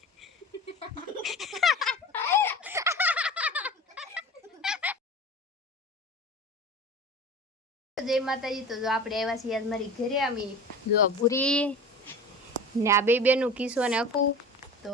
જય માતાજી તો જો આપણે આવ્યા છીએ આજ મારી ઘરે અમે જો ભૂરી ને આ બે બેનું કિસ્સો ને અકું તો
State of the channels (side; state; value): both; normal; correlation 0.36